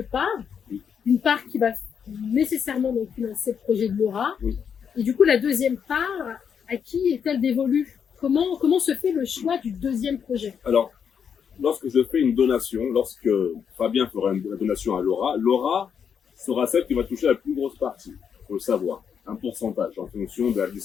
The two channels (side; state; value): right; quieter; 7.3 dB